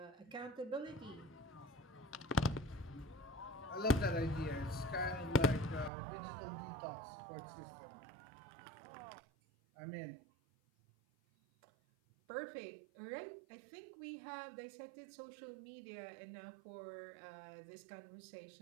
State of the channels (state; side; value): drops out; left; at 5.9 s